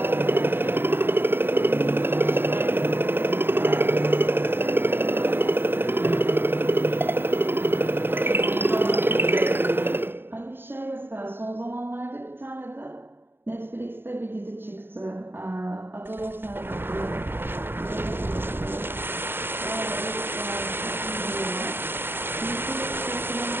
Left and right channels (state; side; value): late; left; 0.10 ms